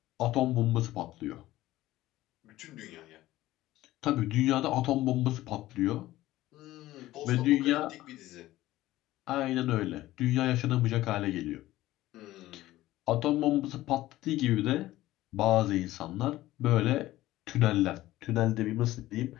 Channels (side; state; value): right; quieter; 16.0 dB